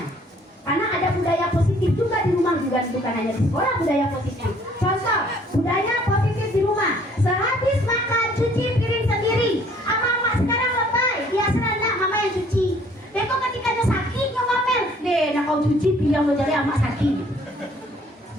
Karena ada budaya positif juga di rumah, juga bukan hanya di sekolah budaya positifnya. Contoh, budaya positif di rumah. Sehabis makan cuci piring sendiri. Mama sekarang lebay, dia serana mama yang cuci. Beko ketika dia sakit ngomel, deh, nak kau cuci piring lo jadi amak sakit.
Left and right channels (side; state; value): both; normal; correlation 0.59